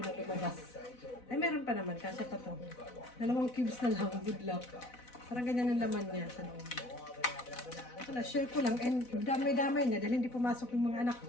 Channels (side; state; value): right; late; 4.0 ms